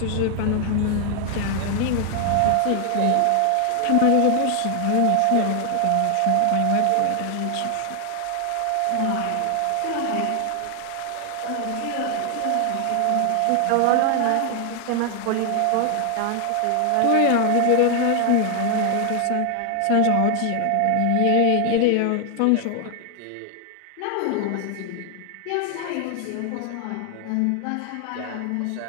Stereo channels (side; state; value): both; different; correlation 0.00